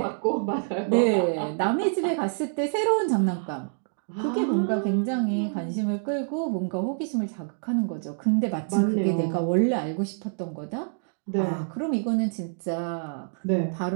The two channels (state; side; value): silent; left; digital silence